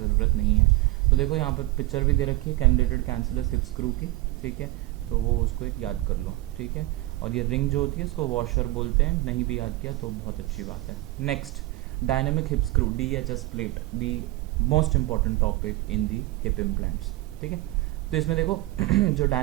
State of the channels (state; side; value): quieter; left; 18.7 dB